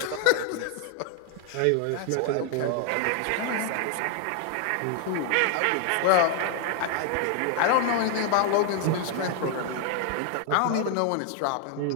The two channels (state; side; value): different; both; correlation 0.00